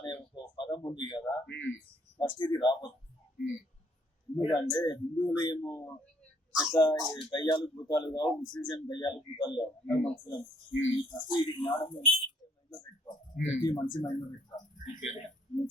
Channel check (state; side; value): normal; both; correlation 0.66